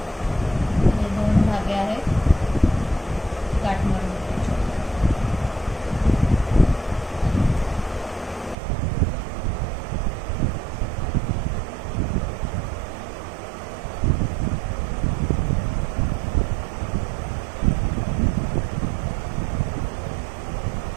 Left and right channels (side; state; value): left; drops out; at 8.6 s